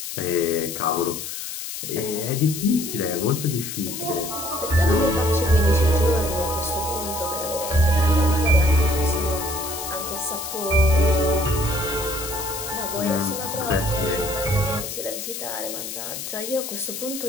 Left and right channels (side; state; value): left; noise; hiss, 7 dB below the sound